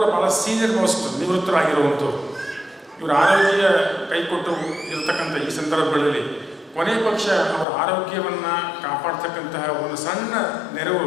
ಭಾಳ ಸೀನಿಯರ್ ಮೋಸ್ಟ್ ನಿವೃತ್ತರಾಗಿರುವಂಥವ್ರು. ಇವರ ಆರೋಗ್ಯ ಕೈಕೊಟ್ಟು ಇರತಕ್ಕಂಥ ಈ ಸಂದರ್ಭಗಳಲ್ಲಿ ಕೊನೆ ಪಕ್ಷ ಅವರ ಆರೋಗ್ಯವನ್ನು ಕಾಪಾಡ್ತಕ್ಕಂತಹ ಒಂದು ಸಣ್ಣ ನೆರವು,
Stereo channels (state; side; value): drops out; right; at 7.7 s